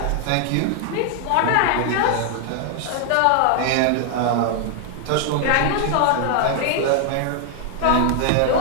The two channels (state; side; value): different; both; correlation 0.00